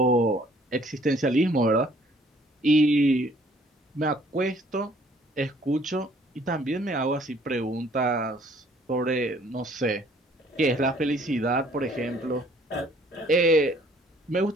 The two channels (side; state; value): both; normal; correlation 0.59